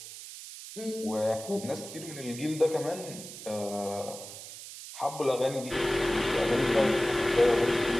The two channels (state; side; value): noise; right; hiss, 12 dB below the sound